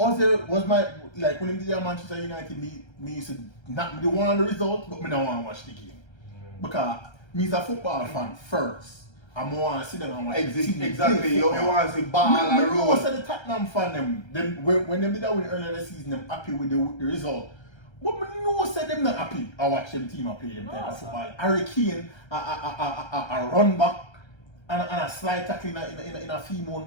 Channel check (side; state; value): right; late; 1.3 ms